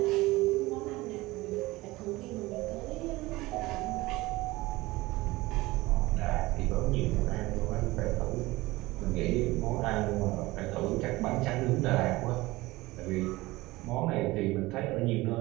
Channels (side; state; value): left; quieter; 20.0 dB